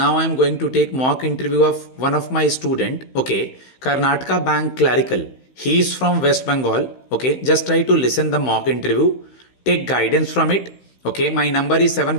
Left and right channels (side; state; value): right; late; 16 ms